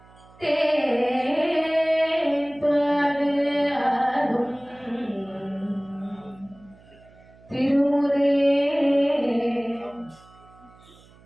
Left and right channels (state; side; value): noise; right; hum, 26 dB below the sound